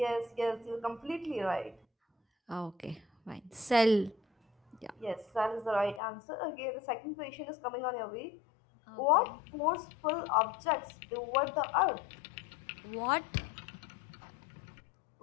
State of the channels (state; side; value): drops out; right; at 6.0 s